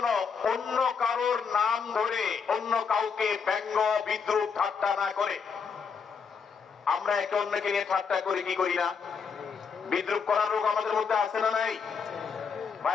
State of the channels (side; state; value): right; quieter; 6.0 dB